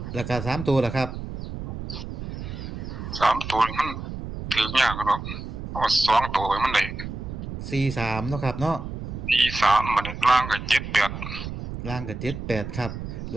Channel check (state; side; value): noise; right; rumble, 7 dB below the sound